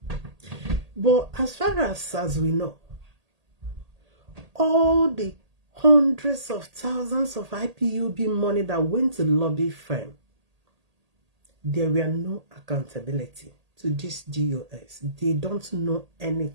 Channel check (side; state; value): left; late; 1.8 ms